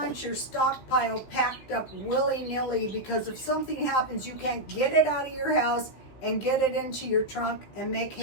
your stockpile packed up willy-nilly, because if something happens, you can't get it out of your house and get it into your trunk and make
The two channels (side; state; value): right; late; 16 ms